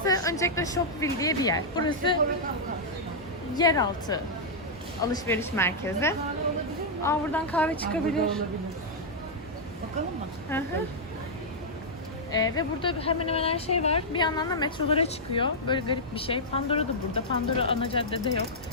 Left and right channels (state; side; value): normal; both; correlation -0.07